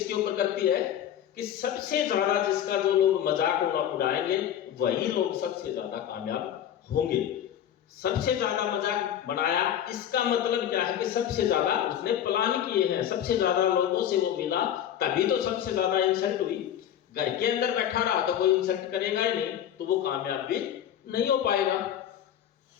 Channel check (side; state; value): right; quieter; 10.3 dB